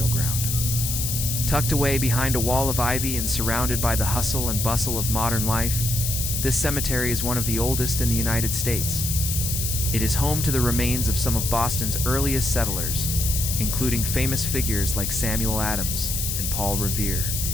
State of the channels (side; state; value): left; noise; hiss, 2 dB below the sound